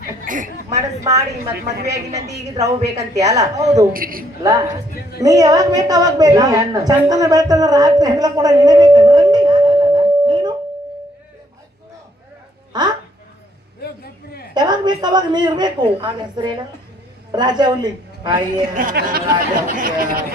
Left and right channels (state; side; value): normal; both; correlation 0.68